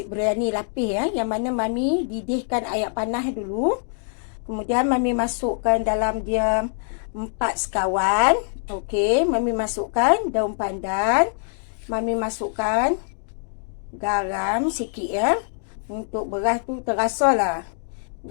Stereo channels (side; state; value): right; silent; digital silence